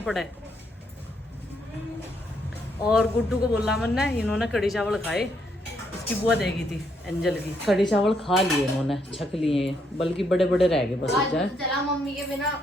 पड़े। और गुड्डू को बोला मैंने, इन्होंने कड़ी चावल खाए, इसकी बुआ देगी थी एंजल की। कड़ी चावल खा लिए इन्होंने, छक लिए, बल्कि बड़े बड़े रह गए बस। चला मम्मी के बिना,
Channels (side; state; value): both; normal; correlation 0.74